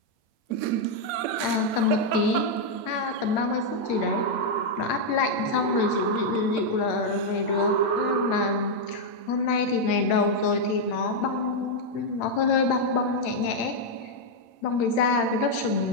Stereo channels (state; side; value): late; right; 8.7 ms